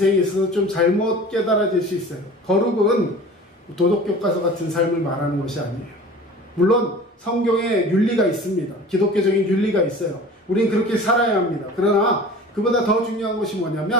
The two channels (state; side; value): normal; both; correlation 0.41